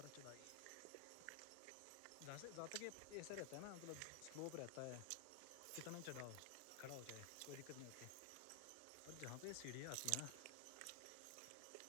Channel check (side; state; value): both; different; correlation 0.00